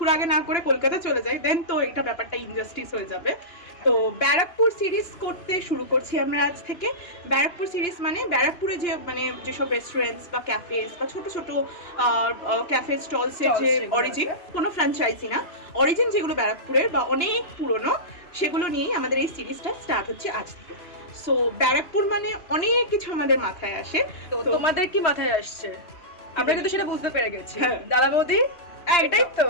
আগে না করে কলকাতা চলে যায়, দেন তো এটা ব্যাপারটা ইনজাস্টিস হয়ে যাবে। তো ব্যারাকপুর সিরিজ করতে শুরু করছি আমরা আজ থেকে। ব্যারাকপুর সিরিজ মানে ব্যারাকপুরে যে যেসব রেস্টুরেন্টস বা ক্যাফেস বা ছোট ছোট ক্যাফে স্টলসের যে অরিজিন, কোনো ফ্র্যাঞ্চাইজি না, অরিজিন যেগুলো ব্যারাকপুরের বা অনেক পুরনো, সেগুলো নিয়েই আমাদের এই সিরিজটা স্টার্ট হচ্ছে আজ থেকে। সো ব্যারাকপুর মানে অনেক কিছু আমাদের মাথায় আসে। তো তোমাদের কি মাথায় আসছে? আমরা কিন্তু সেটা বুঝতে পেরে গেছি। হ্যাঁ। দাদা বৌদি, এটাই তো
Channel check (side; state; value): right; late; 2.9 ms